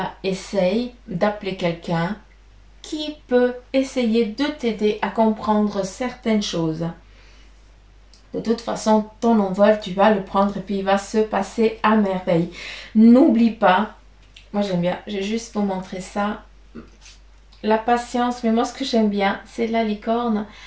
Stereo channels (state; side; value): identical; both; correlation 1.00